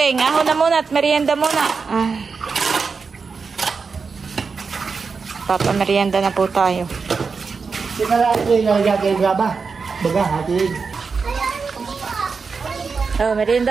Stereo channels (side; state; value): left; quieter; 5.0 dB